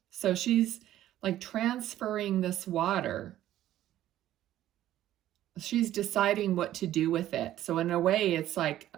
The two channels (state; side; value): quieter; left; 13.1 dB